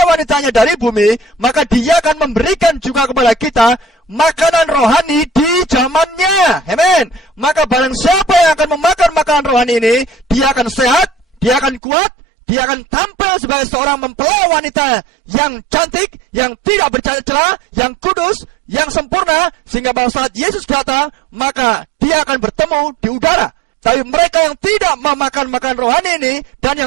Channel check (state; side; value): drops out; left; at 11.8 s